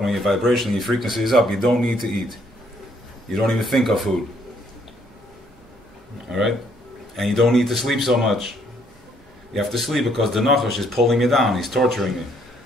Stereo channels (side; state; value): both; normal; correlation 0.68